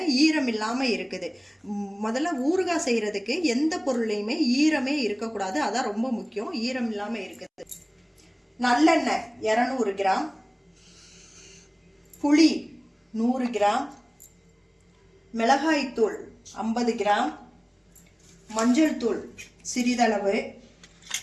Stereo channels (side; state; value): both; identical; correlation 1.00